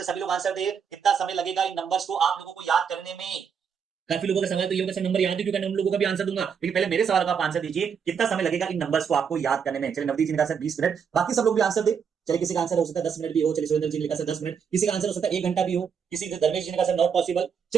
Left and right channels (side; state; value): left; quieter; 6.9 dB